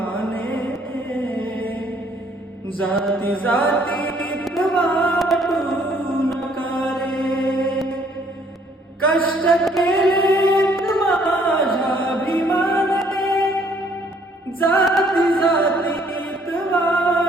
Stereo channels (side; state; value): both; normal; correlation 0.63